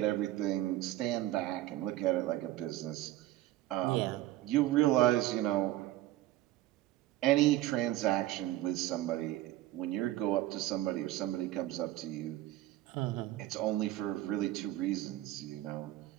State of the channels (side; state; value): left; quieter; 15.3 dB